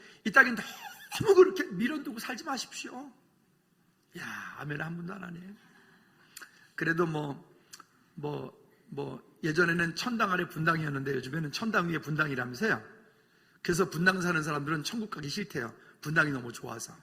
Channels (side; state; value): both; identical; correlation 1.00